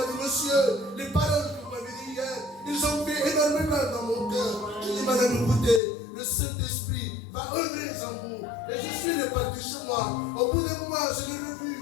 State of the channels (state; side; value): drops out; right; at 5.8 s